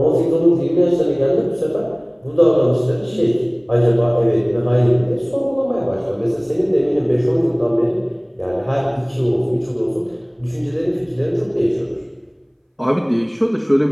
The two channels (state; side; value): identical; both; correlation 1.00